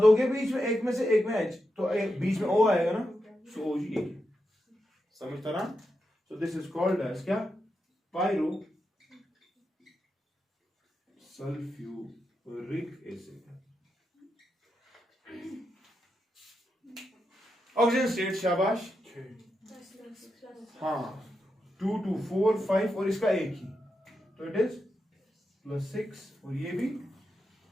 बीच में एक में से एक में H तो बीच में O आएगा ना सो OG समझता ना so this is called as क्या pyro sulphuric acid oxygen state शाबाश हाँ 2 2 4 5 और इसका एक ही तो इट इज +6 और ये भी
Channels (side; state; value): both; normal; correlation 0.86